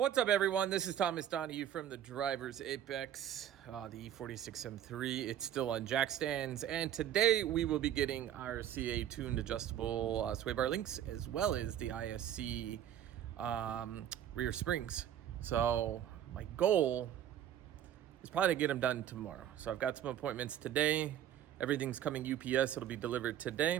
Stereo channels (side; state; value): left; quieter; 10.8 dB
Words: What's up, everyone? This is Thomas Donahue from the Driver's Apex, the E46 M3. It's still on jack stands, and today we will be getting our CA tuned adjustable sway bar links, as well as the ISC rear springs. So my goal is probably to get them done tomorrow. So I've got some appointments today. Everything's coming UPS. It'll be delivered